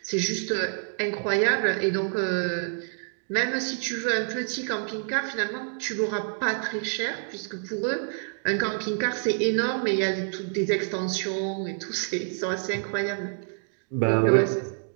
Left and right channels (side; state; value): left; silent; digital silence